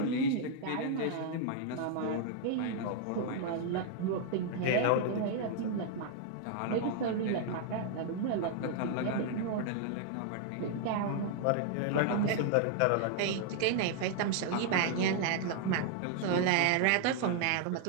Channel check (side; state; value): both; different; correlation 0.00